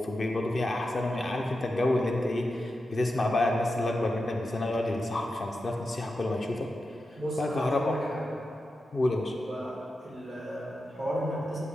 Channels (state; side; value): normal; both; correlation 0.90